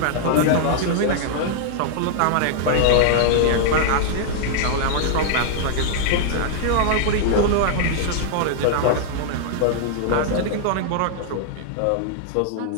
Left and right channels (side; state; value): both; different; correlation -0.01